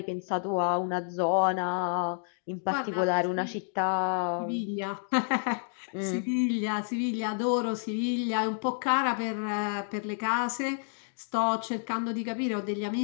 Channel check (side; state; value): right; silent; digital silence